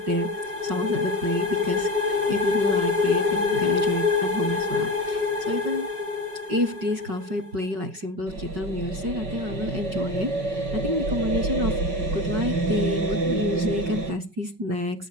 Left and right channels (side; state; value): left; late; 5.3 ms